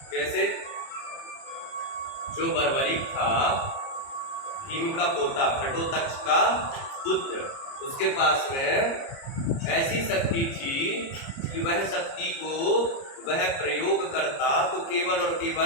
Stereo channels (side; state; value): right; late; 30 ms